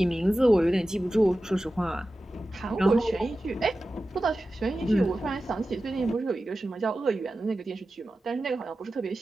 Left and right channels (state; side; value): normal; both; correlation 0.94